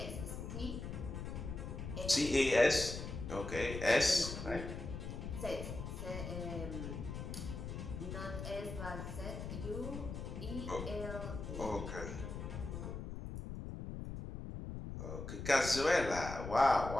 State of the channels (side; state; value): left; noise; rumble, 6 dB below the sound